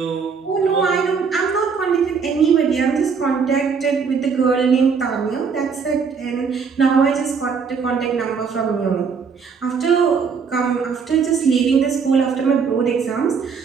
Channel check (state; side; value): quieter; left; 5.8 dB